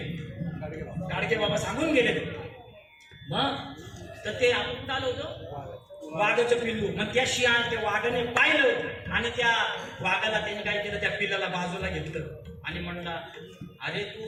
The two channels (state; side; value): identical; both; correlation 1.00